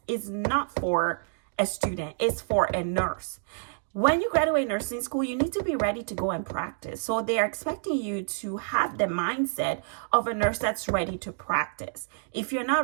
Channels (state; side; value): silent; left; digital silence